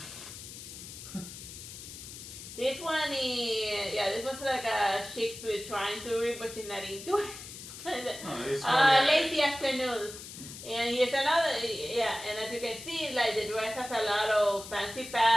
This one is, this one's like a chick trying to read, but she's not into it. Lazy afternoons. And here's another, and as you can see, like the dress has a lot of fancy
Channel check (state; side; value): noise; left; hiss, 12 dB below the sound